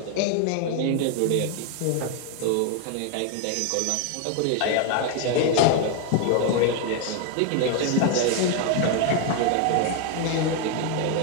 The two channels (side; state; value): both; different; correlation 0.01